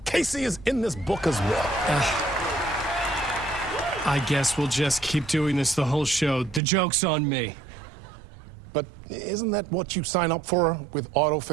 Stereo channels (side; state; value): left; drops out; at 6.6 s